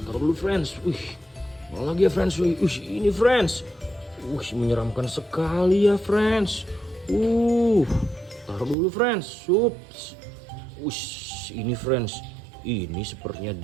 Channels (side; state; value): left; drops out; at 8.8 s